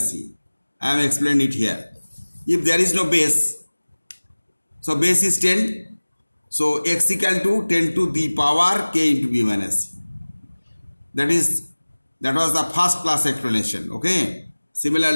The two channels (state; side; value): inverted; both; correlation -1.00